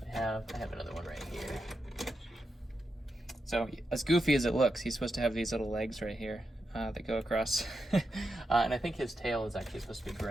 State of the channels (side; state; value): both; normal; correlation 0.87